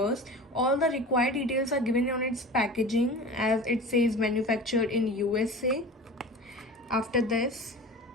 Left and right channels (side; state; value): both; normal; correlation 0.35